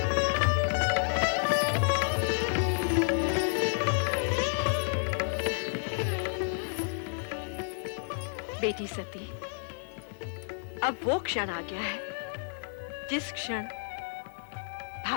बेटी सती, अब वो क्षण आ गया है जिस क्षण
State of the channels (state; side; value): silent; right; digital silence